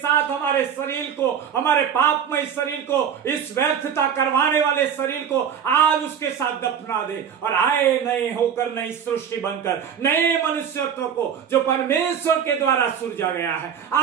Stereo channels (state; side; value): quieter; left; 8.0 dB